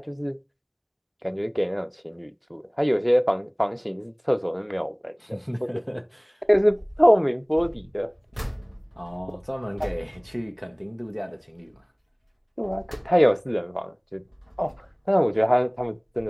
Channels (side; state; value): both; identical; correlation 1.00